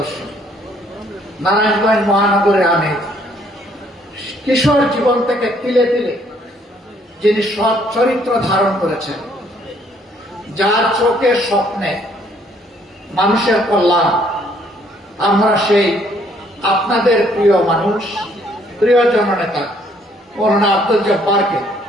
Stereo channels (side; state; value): both; normal; correlation 0.65